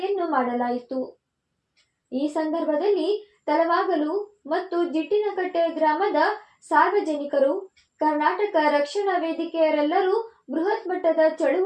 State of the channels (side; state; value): both; identical; correlation 1.00